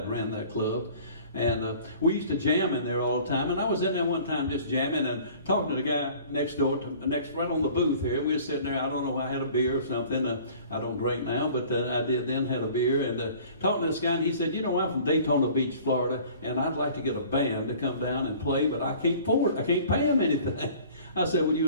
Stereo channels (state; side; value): inverted; both; correlation -0.48